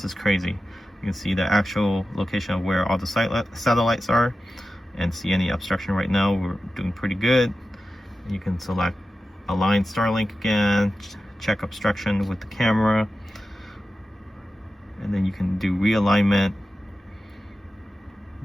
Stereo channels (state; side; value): normal; both; correlation 0.93